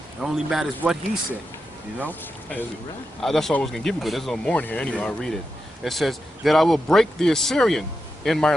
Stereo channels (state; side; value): normal; both; correlation 0.88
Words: It only matters what he said, you know? That's all I was going to give you, but there's no more in here anyway. I'll read it. It says, "That I will break the Assyrian in my